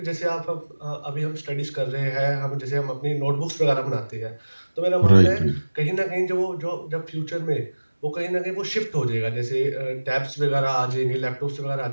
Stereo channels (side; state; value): both; inverted; correlation -1.00